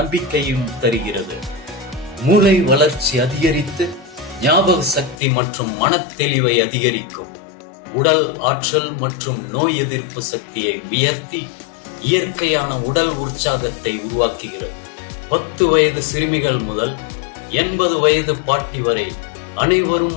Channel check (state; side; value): drops out; right; at 5.2 s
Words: தருகிறது. மூளை வளர்ச்சி அதிகரித்து ஞாபக சக்தி மற்றும் மனத்தெளிவை அதிகரிக்கும். உடல் ஆற்றல் மற்றும் நோய் எதிர்ப்பு சக்தியை உயர்த்தி இயற்கையான உடல் உற்சாகத்தை உருவாக்குகிறது. 10 வயது சிறுமிகள் முதல் 80 வயது பாட்டி வரை அனைவரும்